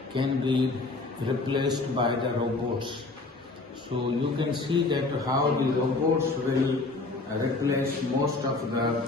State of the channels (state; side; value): quieter; right; 3.5 dB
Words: can be replaced by the robots. So you can see that how the robots will replace most of the